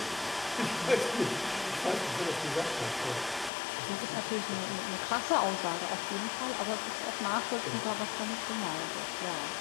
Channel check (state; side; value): drops out; right; at 3.5 s